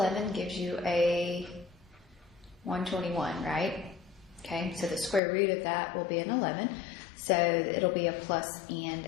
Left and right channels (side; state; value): right; drops out; at 5.2 s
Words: gives you a 121, right? Okay, so the square root of that will be an 11. So it'll be a plus and